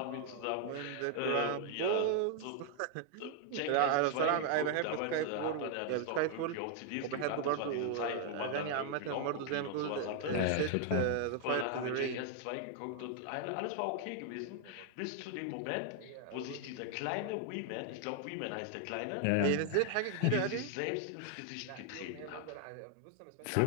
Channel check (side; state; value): both; different; correlation 0.00